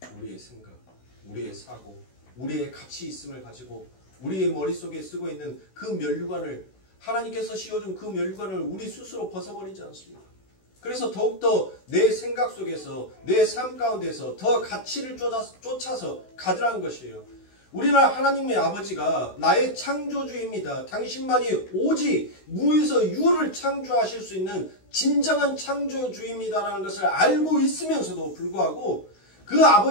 우리의 생각, 우리의 사고, 우리의 가치 있음을 가지고 우리의 머릿속에 쓰고 있는 그 면류관을 하나님께서 씌워준 그 면류관을 우리 스스로 벗어버리지 않습니다. 그래서 더욱더 내 생각 속에서 내 삶 가운데서 더 가치를 쫓아서 가더라는 것이에요. 우리는 하나님의 아버지가 나의 창조주입니다. 당신만이 오직 무에서 유를 창조하실 수 있는 진정한 창조주입니다라는 것을 알고 있으면서도 불구하고 그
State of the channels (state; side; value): late; right; 16 ms